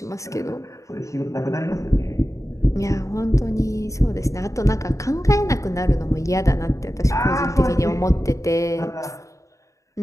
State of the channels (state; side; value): late; right; 0.15 ms